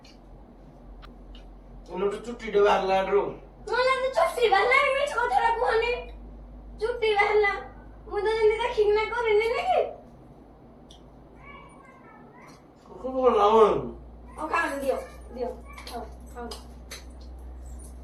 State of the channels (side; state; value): both; identical; correlation 1.00